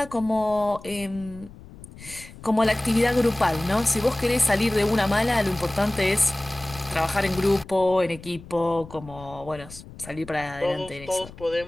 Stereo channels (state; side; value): noise; left; rumble, 18 dB below the sound